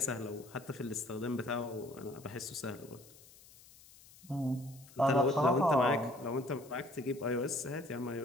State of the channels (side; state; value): left; noise; hiss, 23 dB below the sound